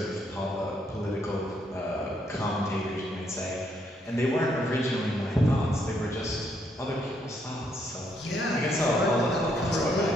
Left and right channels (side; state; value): both; normal; correlation 0.73